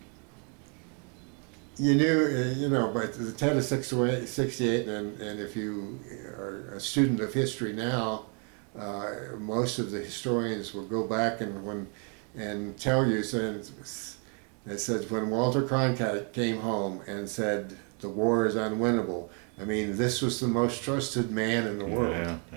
you knew, but the Tet of '68, and if you are a student of history now, most of the historians will go back and tell you, it says when Walter Cronkite came home and said the war is unwinnable, this was the most trusted man in the world.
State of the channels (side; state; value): left; quieter; 38.3 dB